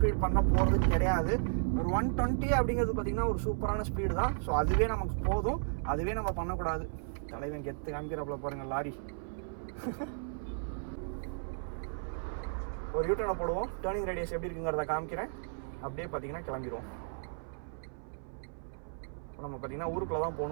பண்ண போகிறது கிடையாது. ஒரு 120 அப்படிங்கிறது பார்த்தீங்கன்னா ஒரு சூப்பரான ஸ்பீடு தான். ஸோ அதுவே நமக்கு போதும், அதுவே நம்ம பண்ணக்கூடாது. தலைவன் கெத்து காமிக்கிறப்பல பாருங்கள் லாரி. ஒரு யூட்டர்னை போடுவோம், டேர்னிங் ரேடியஸ் எப்படி இருக்குங்கிறத காமிக்கிறேன். அப்படியே பார்த்தீங்கன்னா கிளம்பிடுவோம். நம்ம பார்த்தீங்கன்னா ஊருக்குள்ளே தான்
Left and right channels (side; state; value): left; silent; 55 dB below the other